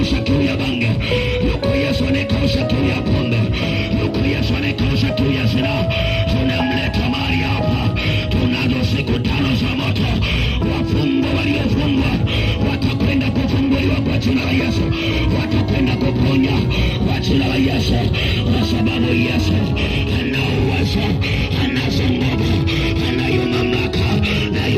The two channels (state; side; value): identical; both; correlation 1.00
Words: kiu ya bange, yuko Yesu anayekausha kiu ya pombe, yuko Yesu anayekausha kiu ya zinaa. Tunamleta mahali hapa. Tunazo siku 5 za moto. Wafungwa waliofungwa watakwenda kufunguliwa kwa jina la Yesu, watakwenda kuponya kwa jina la Yesu, kwa sababu Yesu ana uwezo, anazo nguvu, anayo mamlaka, na